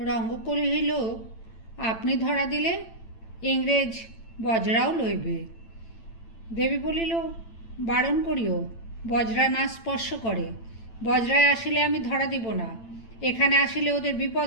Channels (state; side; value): late; right; 8.9 ms